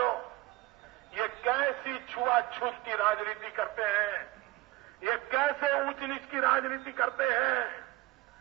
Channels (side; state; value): left; quieter; 19.2 dB